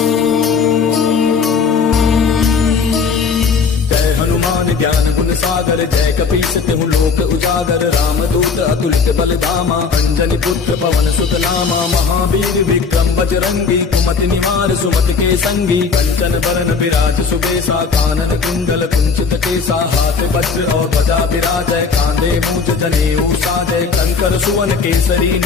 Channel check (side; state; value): right; quieter; 5.2 dB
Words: ज्ञान गुण सागर जय कपीस तिहु लोक उजागर रामदूत अतुलित बल धामा अंजनी पुत्र पवन सुत नामा महावीर विक्रम बजरंगी कुमति निवार सुमति के संगी कंचन बरन विराज सुबेसा कानन कुंडल कुंचित केसा हाथ वज्र और ध्वजा विराजय कांधे मूंज जनेऊ साजय शंकर सुवन केसरी